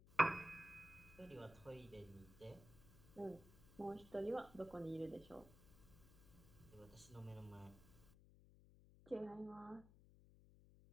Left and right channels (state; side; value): noise; left; hum, 20 dB below the sound